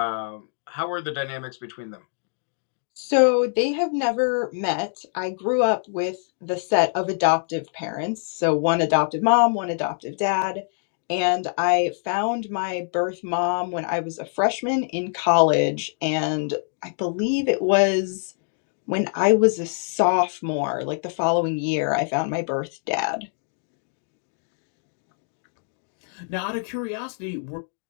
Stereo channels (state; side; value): silent; right; digital silence